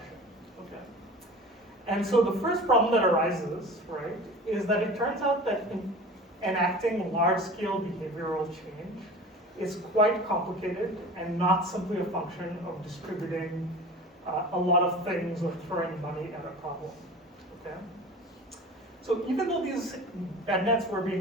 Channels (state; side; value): normal; both; correlation 0.37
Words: Okay. And so the first problem that arises, right, is that it turns out that enacting large-scale behavioral change is quite complicated and not simply a function of distributing a lot of things or throwing money at a problem, okay? So even though these bed nets were